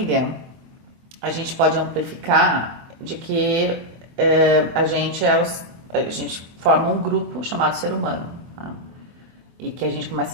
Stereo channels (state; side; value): late; left; 24 ms